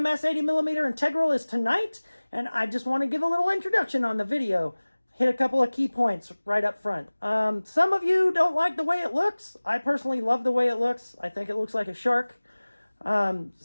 80mm Integral is tonight, and I just want to give a little introduction on the video. Hit a couple of key points right up front. Some of you don't like the way it looks. I personally love the way it looks. I think it looks like a shark.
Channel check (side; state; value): both; inverted; correlation -1.00